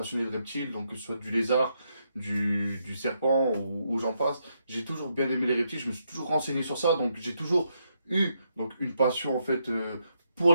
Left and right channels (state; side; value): inverted; both; correlation -0.79